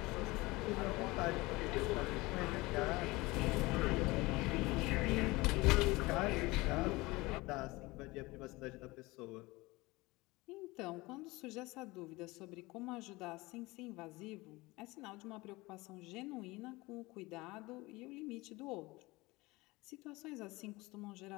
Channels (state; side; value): quieter; right; 21.9 dB